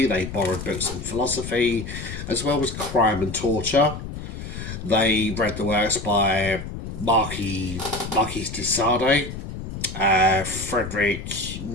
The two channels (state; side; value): noise; left; rumble, 8 dB below the sound